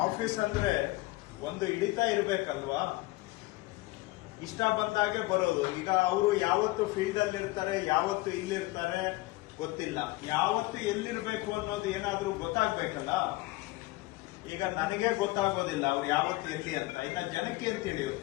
ಆಫೀಸ್ ಅಂದ್ರೆ ಒಂದು ಹಿಡಿತಾ ಇರ್ಬೇಕಲ್ವಾ? ಇಷ್ಟ ಬಂದಾಗೆ ಬರೋದು. ಈಗ ಅವರು ಯಾವತ್ತು ಫೀಲ್ಡ್ ಅಲ್ಲಿ ಇರ್ತಾರೆ, ಯಾವತ್ತು ಇಲ್ಲಿರ್ತಾರೆ ಗೊತ್ತಿಲ್ಲ. ಯಾವತ್ತು ಎಲ್ಲಿರ್ಬೇಕು ಅನ್ನೋದು ಏನಾದ್ರೂ ಗೊತ್ತಾಗ್ಬೇಕಲ್ಲ. ಈಗ ನನಗೆ ಗೊತ್ತಾಗೋದಿಲ್ಲ ಅವ್ರು ಯಾವತ್ತು ಎಲ್ಲಿ ಅಂತ. ಇನ್ನ ಜನಕ್ಕೆ ಏನ್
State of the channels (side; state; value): right; quieter; 20.5 dB